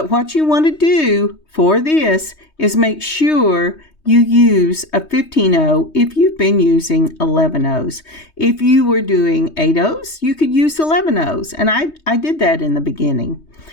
what you want to do for this is make sure you use a 15-0 if you've been using 11-0s. If you were doing 8-0s, you could use 11-0s, and I did that in the beginning.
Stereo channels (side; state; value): right; late; 3.2 ms